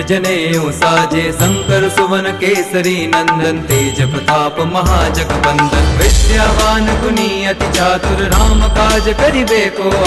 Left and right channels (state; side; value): identical; both; correlation 1.00